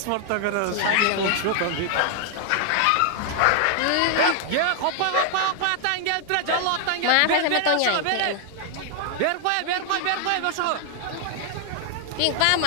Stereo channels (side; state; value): both; different; correlation 0.00